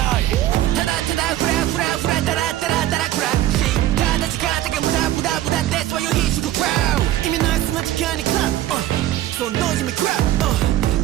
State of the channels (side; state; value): left; quieter; 13.8 dB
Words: いただただフラフラフラダラダラダラクラッシュただ時間だけ無駄無駄無駄でそういう必死クラウ意味ないそんな時間にクラッそのノイズにクラ